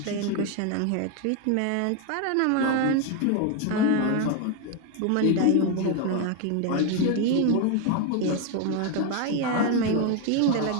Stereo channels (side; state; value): both; different; correlation 0.01